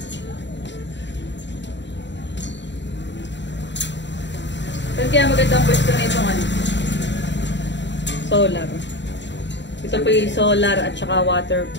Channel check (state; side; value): late; right; 0.52 ms